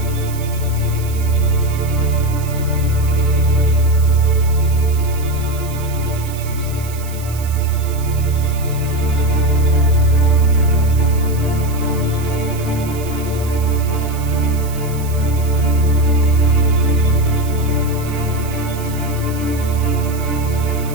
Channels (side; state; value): right; noise; hiss, 16 dB below the sound